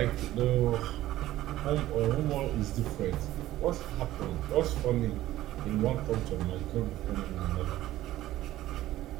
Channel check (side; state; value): left; quieter; 14.9 dB